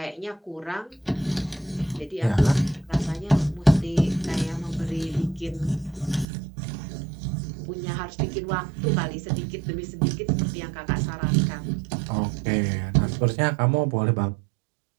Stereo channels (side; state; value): left; drops out; at 6.2 s